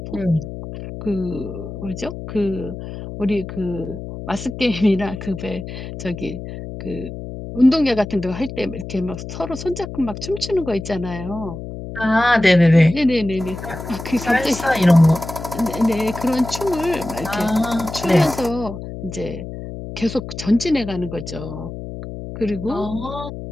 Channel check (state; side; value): noise; left; hum, 9 dB below the sound